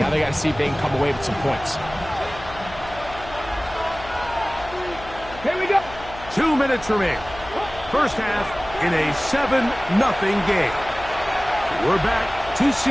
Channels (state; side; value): noise; left; hum, 16 dB below the sound